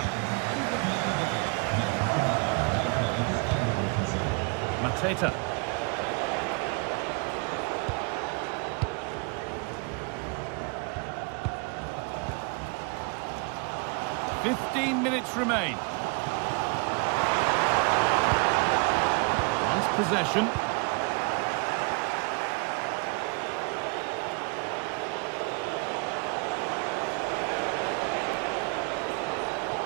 Mateta. "15 minutes remain. Nice possession.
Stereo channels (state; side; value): quieter; left; 33.1 dB